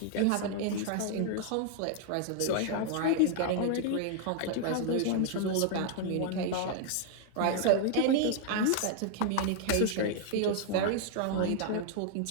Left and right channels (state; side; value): different; both; correlation 0.00